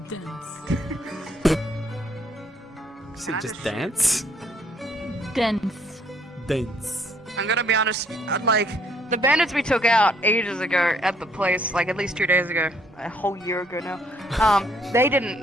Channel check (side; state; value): both; normal; correlation 0.66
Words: Is it just dance? Dense. Dance. I'm gonna be honest, like, the bandits we took out ages ago at the place, like at least 2 days ago, a whole year ago now, they